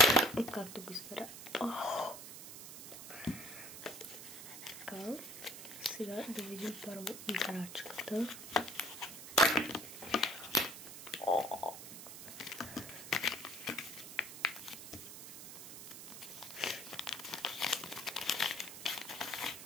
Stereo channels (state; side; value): noise; right; hiss, 12 dB below the sound